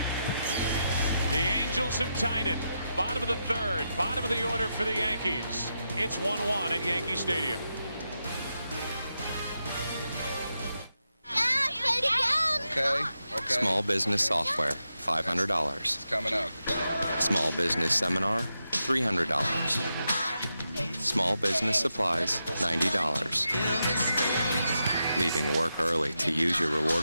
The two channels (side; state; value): both; inverted; correlation -0.87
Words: The Angels have tied it. Bottom of the 3rd. Bottom of the order for the Yankees. It's 1-1 at Yankee Stadium. Okay. Small business software, $500. It's coming up. Small business seminar, $300. Small business supplies, $90. Leaving work early to use your